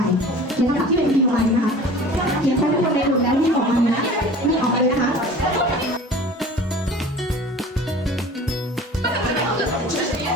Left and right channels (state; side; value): normal; both; correlation 0.42